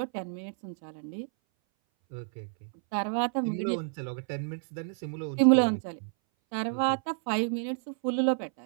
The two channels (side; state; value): left; silent; 58 dB below the other